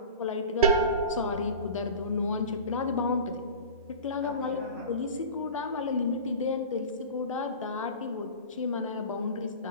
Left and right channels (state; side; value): inverted; both; correlation -0.34